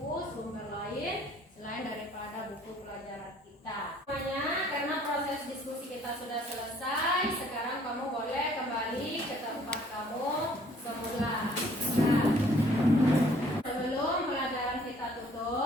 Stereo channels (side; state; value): both; normal; correlation 0.59